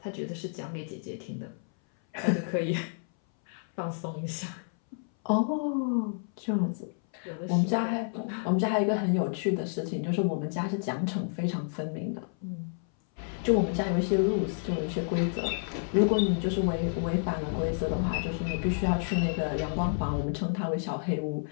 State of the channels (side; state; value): right; silent; 58 dB below the other